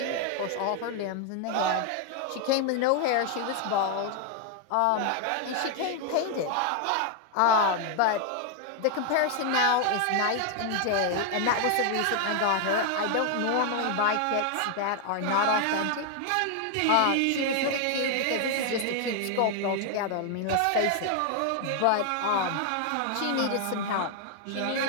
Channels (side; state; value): both; different; correlation 0.00